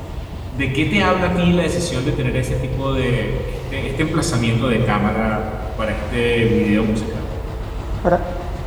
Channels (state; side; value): identical; both; correlation 1.00